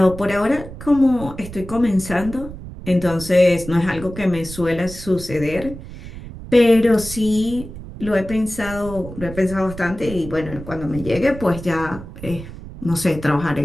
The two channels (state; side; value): noise; right; rumble, 12 dB below the sound